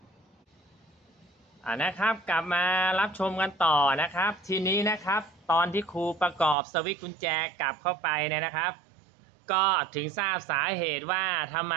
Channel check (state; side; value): drops out; left; at 6.6 s